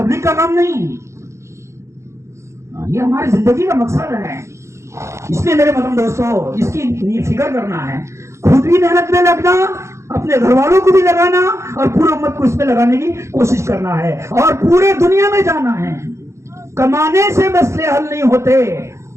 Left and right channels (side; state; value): left; late; 0.14 ms